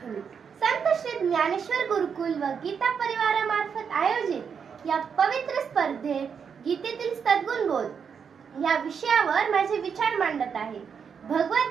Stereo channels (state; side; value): quieter; left; 6.7 dB